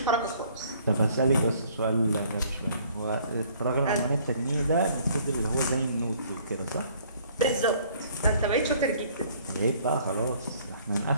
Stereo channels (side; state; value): both; inverted; correlation -0.58